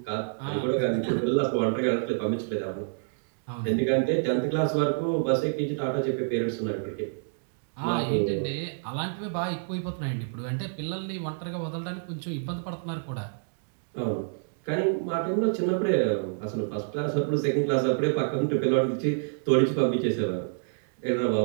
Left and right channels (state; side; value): silent; left; digital silence